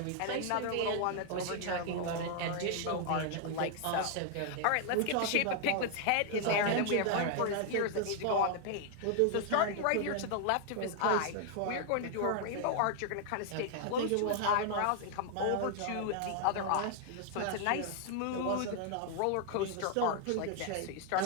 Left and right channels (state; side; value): different; both; correlation 0.00